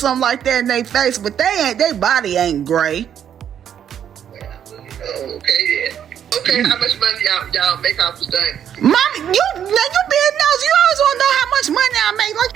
like that in their face, but their body ain't gray. Okay then. Okay, how much money y'all make off this thing? Mommy, you being nosy. You always want to know how much money I make. Like,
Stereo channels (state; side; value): quieter; left; 9.2 dB